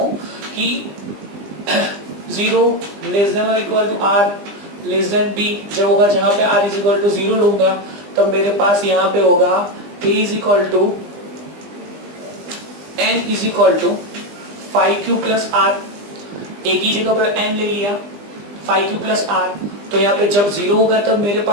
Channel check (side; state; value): left; late; 20 ms